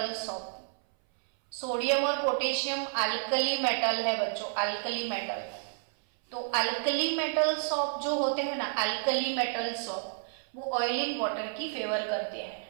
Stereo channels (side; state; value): left; silent; 58 dB below the other